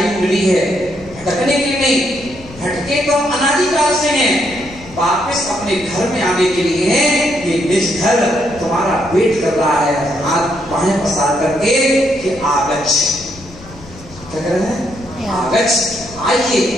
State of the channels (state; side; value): noise; left; rumble, 19 dB below the sound